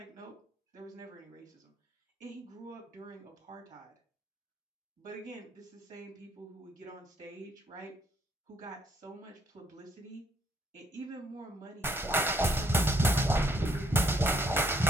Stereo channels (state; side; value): normal; both; correlation 0.68